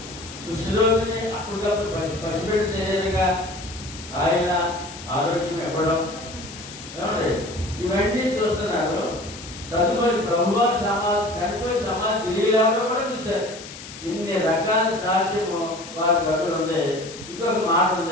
కుష్ఠరోగిని అప్పటికప్పుడు పసిపెట్టి శరీరంగా ఆయన ఆరోగ్యం ఇవ్వడం, ఏమండి ఇవన్నీ చూస్తున్నారు. తదుపరి ప్రభువారు చనిపోయి సమాధి తిరిగి లేవడం కూడా చూశారు. ఇన్ని రకాల సాక్ష్యము వారి దగ్గర ఉంది. ఇంకొక మాట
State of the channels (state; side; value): noise; left; hiss, 14 dB below the sound